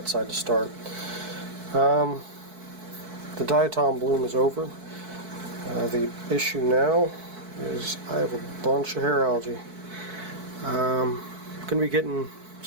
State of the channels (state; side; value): late; left; 4.6 ms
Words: side to start. The diatom bloom is over. The issue now is I have a bunch of hair algae. I'm going to be getting